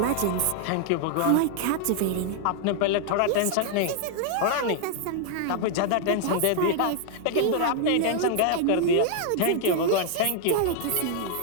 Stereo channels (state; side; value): different; both; correlation 0.00